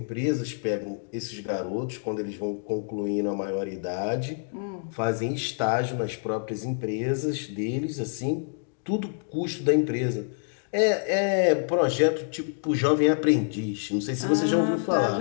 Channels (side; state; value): right; silent; digital silence